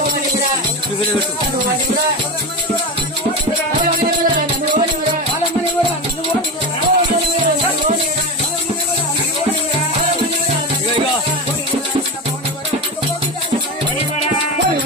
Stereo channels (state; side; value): normal; both; correlation 0.22